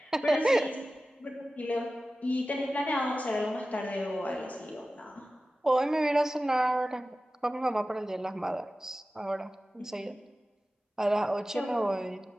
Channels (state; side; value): normal; both; correlation 0.95